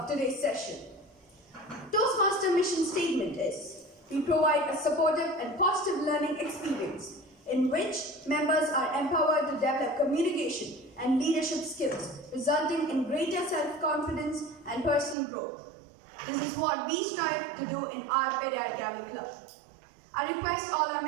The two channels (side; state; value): left; drops out; at 15.2 s